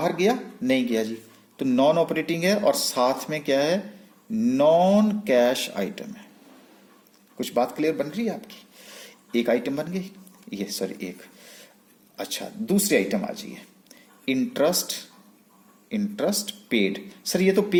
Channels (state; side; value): identical; both; correlation 1.00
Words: गया? नहीं गया जी, तो नॉन ऑपरेटिंग है, और साथ में क्या है? नॉन कैश आइटम है। कुछ बात क्लियर बन रही है आपकी? एक आइटम बन गई ये, सॉरी एक। अच्छा, दूसरी आइटम आ जाइए, इंटरेस्ट पेड। सर ये तो